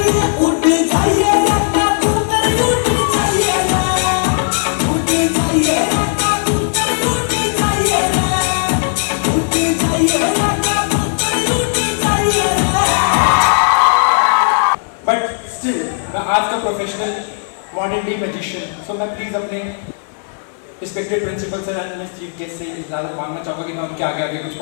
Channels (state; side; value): silent; right; digital silence